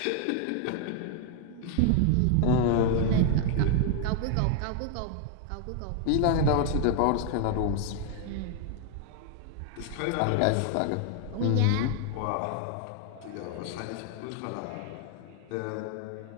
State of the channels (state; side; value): different; both; correlation 0.00